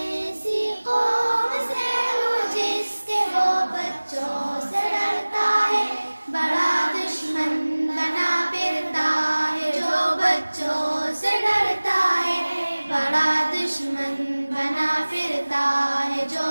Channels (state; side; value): inverted; both; correlation -1.00